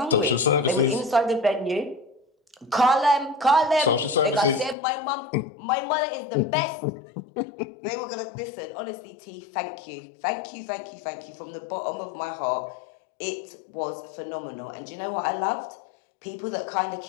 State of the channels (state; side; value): drops out; right; at 4.8 s